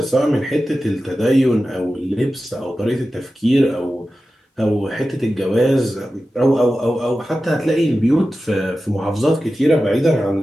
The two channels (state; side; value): normal; both; correlation 0.94